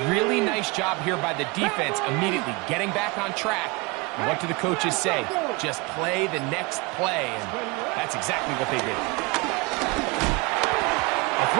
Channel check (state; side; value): quieter; left; 26.8 dB